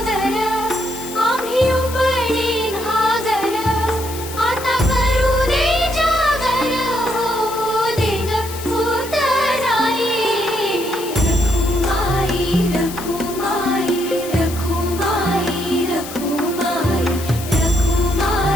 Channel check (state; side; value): noise; left; hiss, 12 dB below the sound